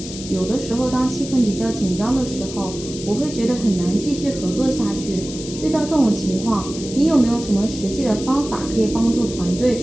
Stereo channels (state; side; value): noise; left; hiss, 12 dB below the sound